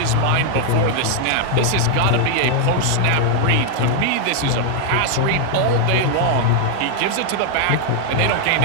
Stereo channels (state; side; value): different; both; correlation 0.00